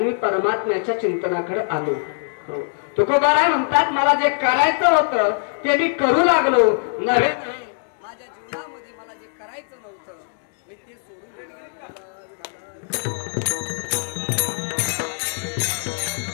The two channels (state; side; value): silent; right; digital silence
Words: मी परमात्म्याच्या चिंतनाकडे आलो. तुकोबारा म्हणतात मला जे करायचं होतं ते मी करू लागलो. नव्हे माझ्या जीवनामध्ये मला जे करायचं नव्हतं मी ते सोडून दिलं.